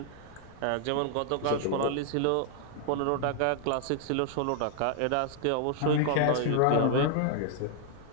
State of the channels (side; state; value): both; different; correlation 0.00